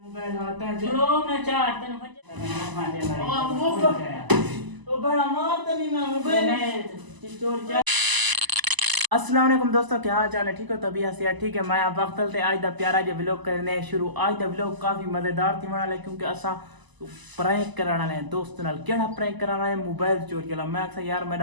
आता है चलो मैं चार तन फटे ओ बड़ा मार तनी मैं मोबाइल चोर अस्सलाम वालेकुम दोस्तों, क्या हाल चाल है? ठीक हो? तबीयत से ठीक है। मैं आप वक्त ते आज दा प्यारा जो व्लॉग करने शुरू। आज दा व्लॉग काफी मजेदार थी वाला है क्योंकि असा प्रैंक कराना है दोस्त नाल। केड़ा प्रैंक कराना है? मोबाइल चोरी वाला। मैं आखा यार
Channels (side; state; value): left; late; 1.0 ms